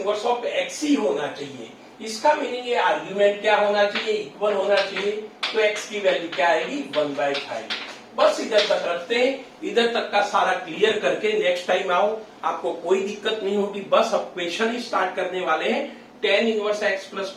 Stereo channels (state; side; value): identical; both; correlation 1.00